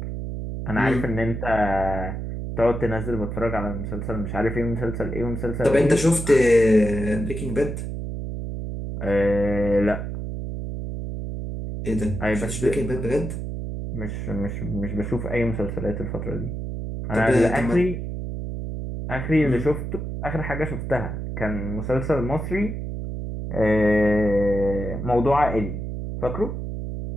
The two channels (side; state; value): right; noise; hum, 5 dB below the sound